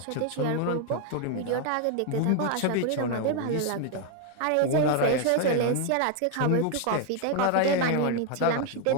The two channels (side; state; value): both; different; correlation 0.00